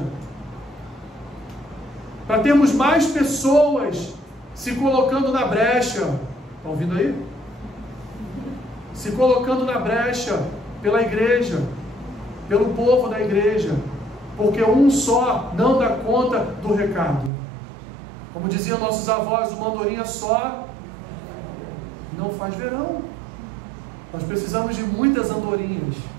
para termos mais pessoas se colocando na brecha. Estão ouvindo aí? Se colocando na brecha pela igreja, pelo povo da igreja, porque um só não dá conta do recado. Como diziam nossos avós, uma andorinha só não faz verão. Nós precisamos de muitas andorinhas,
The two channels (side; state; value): left; drops out; at 17.3 s